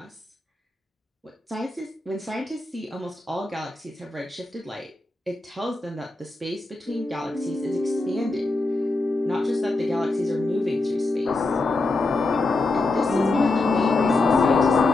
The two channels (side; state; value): right; quieter; 3.1 dB